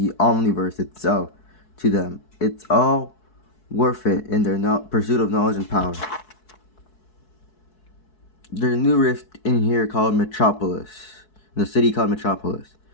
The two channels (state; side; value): late; right; 4.7 ms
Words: omniverse itself to them. It's all worth it in their pursuit of knowledge and power. There's a new rift in here called Metropolis. In the city called Metropolis.